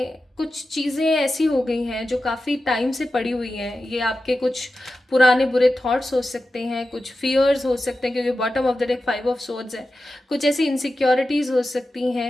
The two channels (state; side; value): normal; both; correlation 0.92